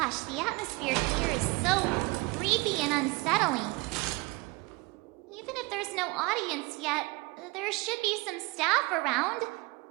Gosh, the atmosphere here is so creepy and unsettling. Even if there's no audience yet, there should be some staff around.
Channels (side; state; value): left; quieter; 24.5 dB